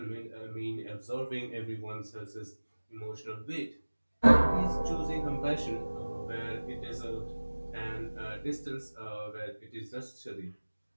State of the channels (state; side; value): inverted; both; correlation -1.00